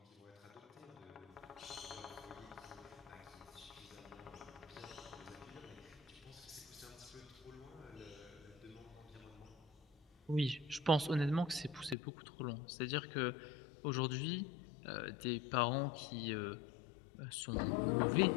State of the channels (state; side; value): drops out; right; at 12.0 s